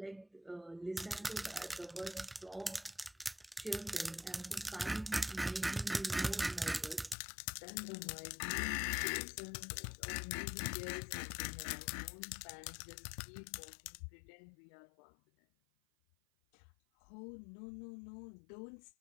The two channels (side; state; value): right; drops out; at 7.2 s